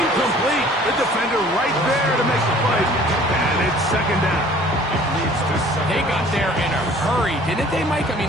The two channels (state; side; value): normal; both; correlation 0.52